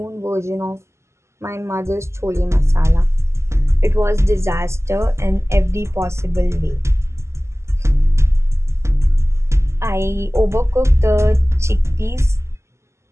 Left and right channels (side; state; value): left; late; 0.13 ms